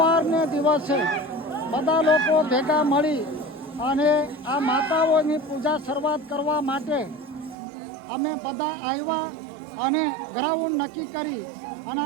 દિવસે બધા લોકો ભેગા મળી અને આ માતાઓની પૂજા શરૂઆત કરવા માટે અમે બધા આવ્યા અને ગ્રાઉન્ડ નક્કી કરી અને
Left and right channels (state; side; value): drops out; left; at 7.6 s